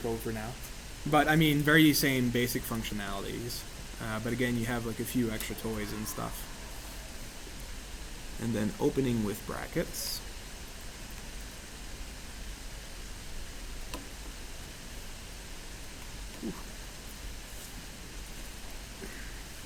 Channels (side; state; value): both; identical; correlation 1.00